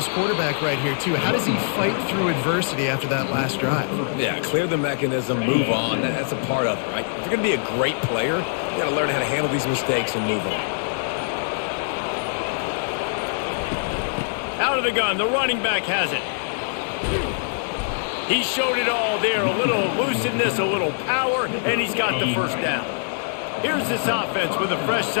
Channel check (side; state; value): right; silent; digital silence